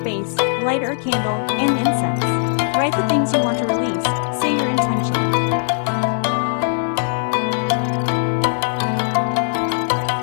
lighter candle, and incense. Write the things you want to release, say your intention.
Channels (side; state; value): right; silent; digital silence